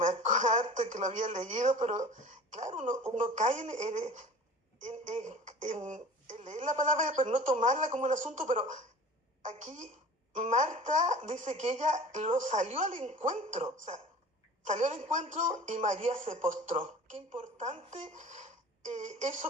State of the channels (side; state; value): both; normal; correlation 0.41